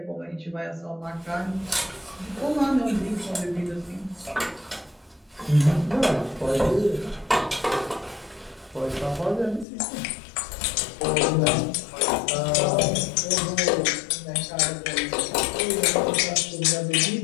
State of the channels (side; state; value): right; drops out; at 9.7 s